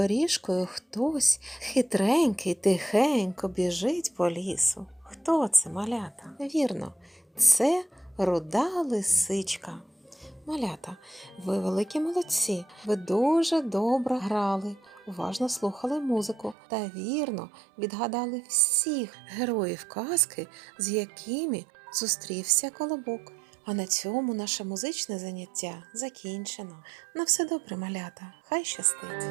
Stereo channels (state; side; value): drops out; left; at 16.6 s